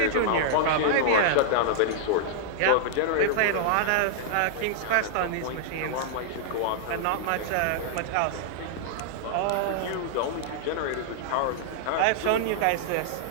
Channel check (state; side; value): different; both; correlation -0.01